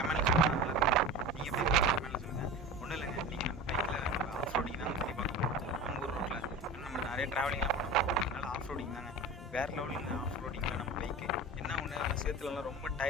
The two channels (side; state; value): both; normal; correlation 0.32